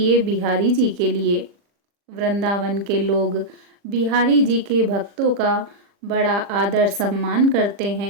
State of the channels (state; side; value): late; left; 40 ms